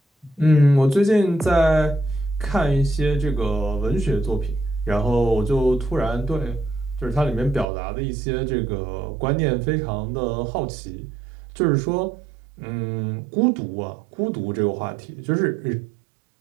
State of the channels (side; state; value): left; drops out; at 7.7 s